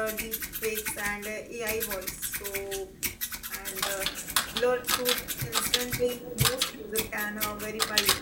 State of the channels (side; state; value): both; identical; correlation 1.00